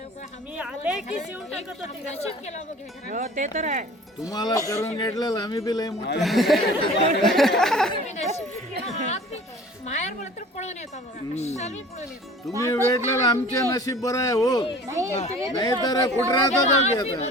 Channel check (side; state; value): both; normal; correlation 0.45